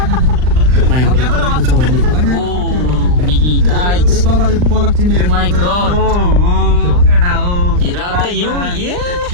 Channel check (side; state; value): left; late; 39 ms